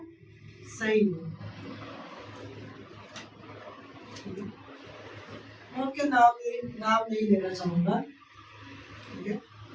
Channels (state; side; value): identical; both; correlation 1.00